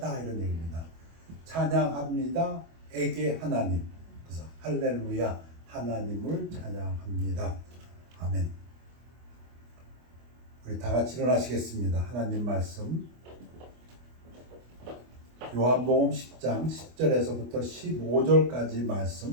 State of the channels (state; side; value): late; left; 25 ms